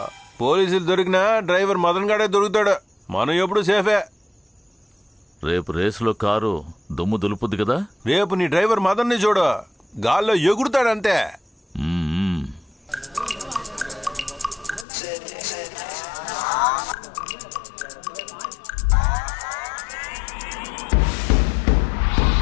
పోలీసులు దొరికినా డ్రైవర్ మదన్ గాడే దొరుకుతాడు. మనం ఎప్పుడు సేఫే. రేపు రేసులో కారు దుమ్ము దులుపుద్ది కదా? రేపు నీ డ్రైవర్ మదన్ని చూడు, గాల్లో ఎగురుతాడంతే.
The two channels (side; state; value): right; drops out; at 14.9 s